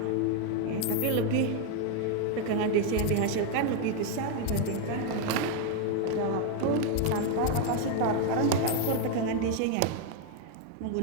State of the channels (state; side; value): different; both; correlation 0.01